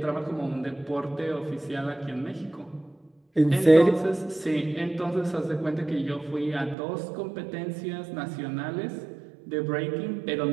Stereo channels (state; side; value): drops out; left; at 6.8 s